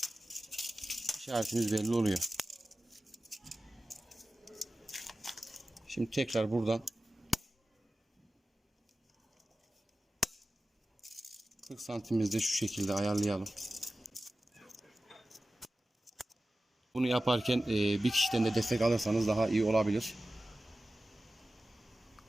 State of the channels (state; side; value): normal; both; correlation 0.95